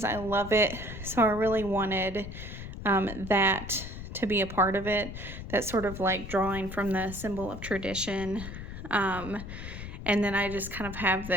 I love it. So I really wanted that to be a part of it. That sort of like drawing from the symbol of tradition. And then I just kind of have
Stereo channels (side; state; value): left; noise; rumble, 10 dB below the sound